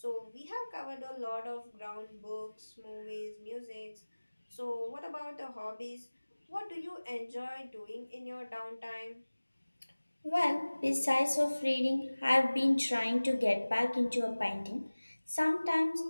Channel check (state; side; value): inverted; both; correlation -1.00